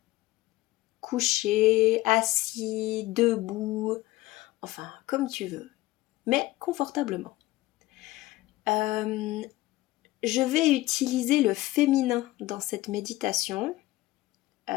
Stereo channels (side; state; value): right; quieter; 17.9 dB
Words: couché, assis, debout, enfin comme tu veux, mais confortablement. Je vais utiliser le féminin dans cette méditation